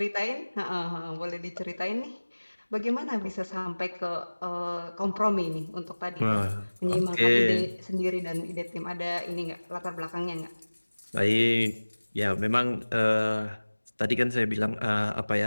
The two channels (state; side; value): inverted; both; correlation -1.00